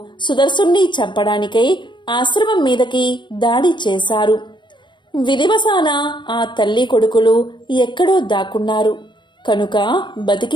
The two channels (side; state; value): right; late; 0.23 ms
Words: సుదర్శుణ్ణి చంపడానికై ఆశ్రమం మీదకి దాడి చేశారు. విధివశాన ఆ తల్లి కొడుకులు ఎక్కడో దాక్కున్నారు కనుక